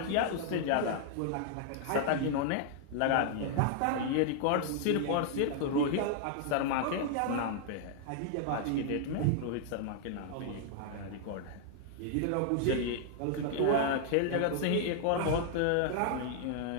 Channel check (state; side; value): different; both; correlation -0.01